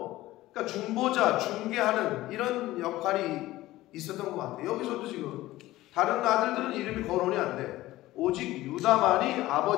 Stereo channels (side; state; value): right; quieter; 16.7 dB